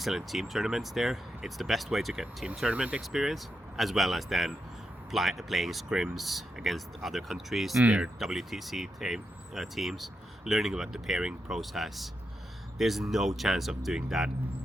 team tournaments there. It's the best way to get team tournament experience, as well as then playing scrims against other countries, their WTC teams, learning about the pairing process. There's no chance of doing that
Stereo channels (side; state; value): both; normal; correlation 0.85